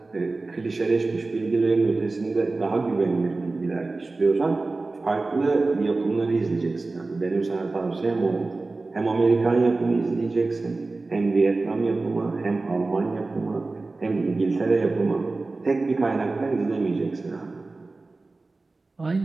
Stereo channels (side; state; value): left; quieter; 3.5 dB